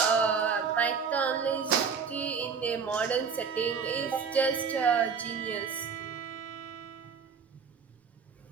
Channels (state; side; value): quieter; left; 6.0 dB